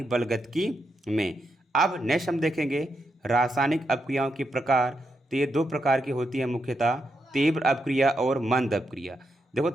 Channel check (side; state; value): both; normal; correlation 0.83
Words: बलगतिकी में। अब नेक्स्ट हम देखेंगे रासायनिक अपक्रियाओं के प्रकार। तो ये दो प्रकार की होती है मुख्यतः, तीव्र अपक्रिया और मंद अपक्रिया। देखो